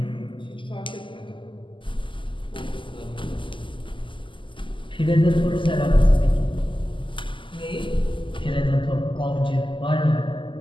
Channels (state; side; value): late; right; 0.25 ms